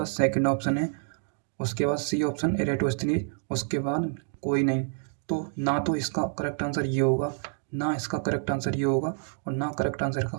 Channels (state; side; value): silent; left; digital silence